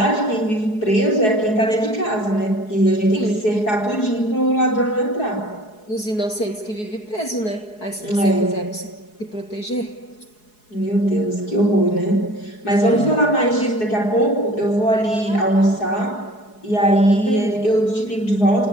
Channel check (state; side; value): late; right; 4.7 ms